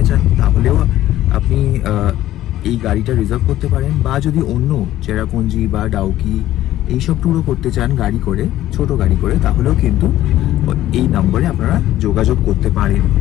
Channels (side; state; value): right; quieter; 13.9 dB